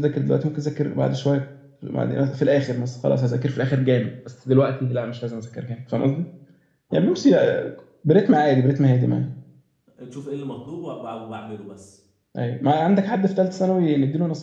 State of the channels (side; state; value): both; identical; correlation 1.00